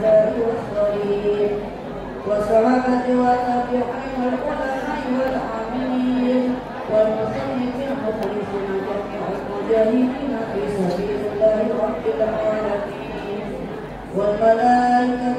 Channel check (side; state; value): both; identical; correlation 1.00